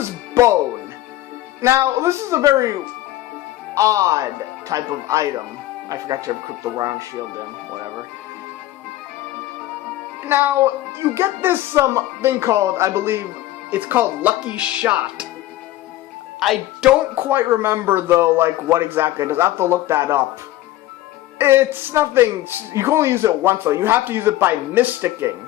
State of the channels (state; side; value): quieter; right; 15.3 dB